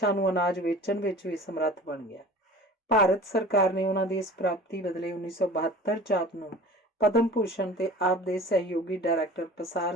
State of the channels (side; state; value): both; normal; correlation 0.42